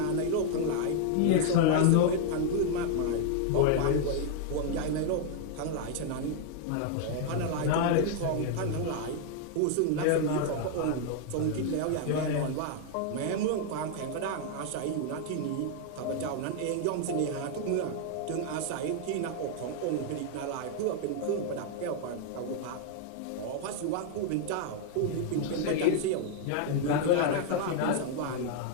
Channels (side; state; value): both; different; correlation 0.00